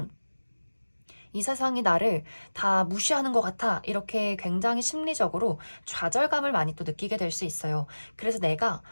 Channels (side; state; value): both; inverted; correlation -1.00